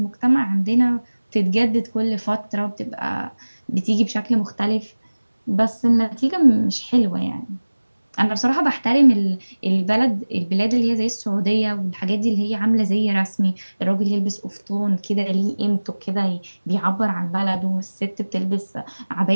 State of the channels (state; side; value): inverted; both; correlation -1.00